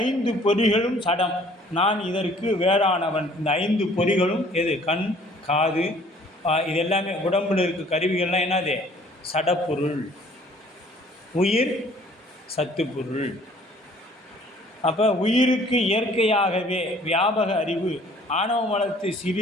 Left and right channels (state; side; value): normal; both; correlation 0.56